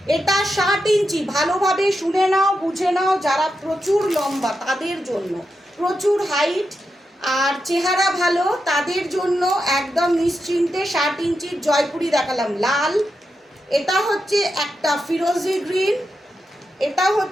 এটা 60 ইঞ্চি, ভালোভাবে শুনে নাও, বুঝে নাও। যারা প্রচুর লম্বা তাদের জন্য, প্রচুর হাইট আর চেহারা ভালো তাদের জন্য একদম নিশ্চিন্তে 60 ইঞ্চির জয়পুরি দেখালাম। লাল, এটা হচ্ছে একটা ফিরোজি গ্রিন, এটা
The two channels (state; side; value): normal; both; correlation 0.87